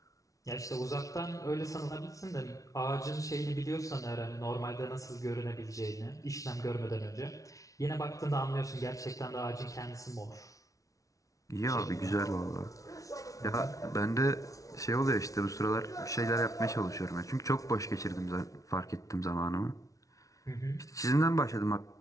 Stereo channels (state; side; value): late; right; 0.17 ms